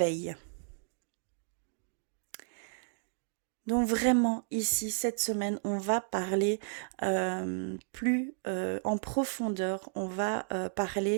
Donc vraiment ici, cette semaine, on va parler plus en profondeur, on va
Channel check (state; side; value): silent; left; digital silence